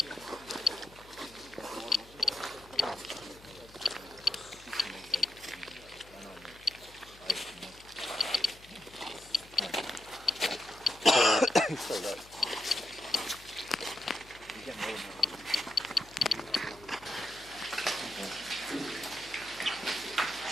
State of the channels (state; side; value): noise; left; hum, 22 dB below the sound